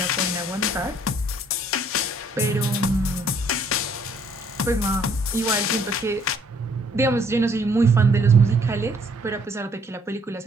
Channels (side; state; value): both; normal; correlation 0.63